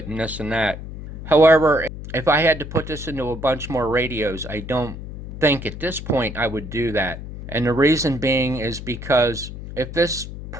and this and that. However, if I had to put this into a bunch more radios, I don't think at this point I would do that. And the reason being is because if this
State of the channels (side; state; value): left; noise; hum, 10 dB below the sound